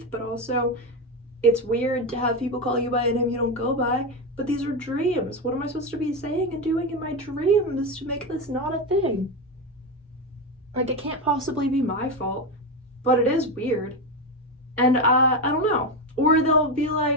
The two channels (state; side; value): normal; both; correlation 0.13